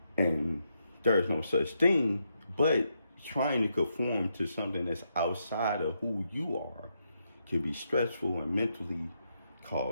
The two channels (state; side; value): inverted; both; correlation -0.80